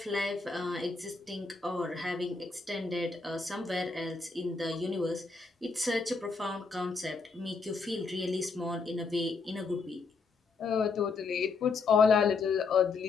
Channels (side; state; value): right; quieter; 4.4 dB